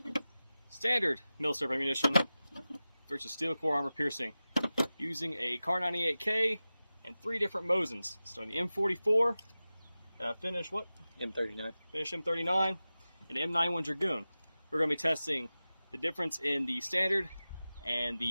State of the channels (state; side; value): inverted; both; correlation -0.95